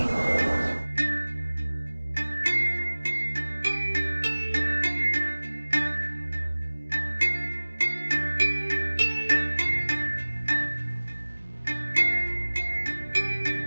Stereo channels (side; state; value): both; inverted; correlation -1.00